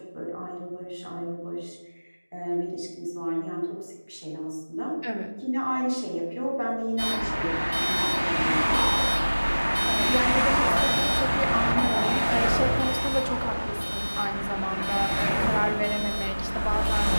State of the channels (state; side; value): inverted; both; correlation -1.00